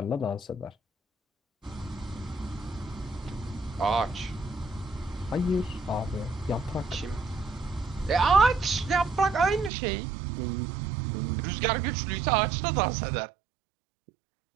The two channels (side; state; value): left; drops out; at 9.7 s